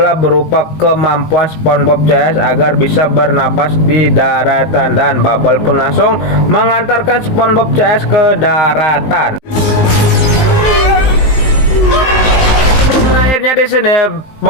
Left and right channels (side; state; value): right; late; 19 ms